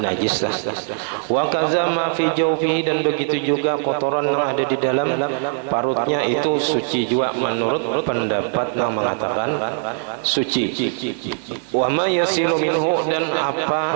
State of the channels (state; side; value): silent; left; digital silence